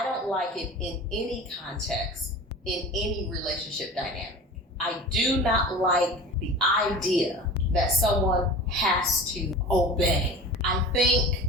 don't like it in any context, in any relationship dynamic. I do not like the idea that someone has to obey. I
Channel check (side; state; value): both; normal; correlation 0.36